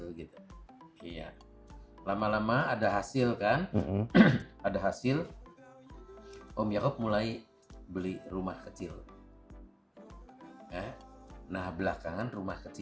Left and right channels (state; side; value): identical; both; correlation 1.00